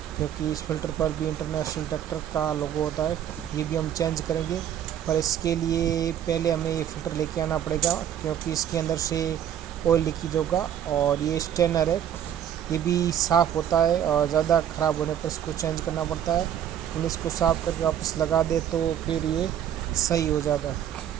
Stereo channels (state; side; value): quieter; left; 9.9 dB